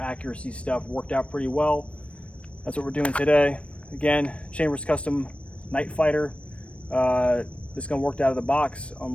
stuff worked out pretty well. That's what we're doing today. Again, Chambers Custom Night Fighter. This gun worked out of the box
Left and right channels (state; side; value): late; right; 0.061 ms